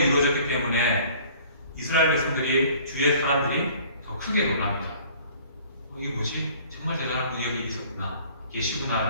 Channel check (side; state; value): both; inverted; correlation -0.52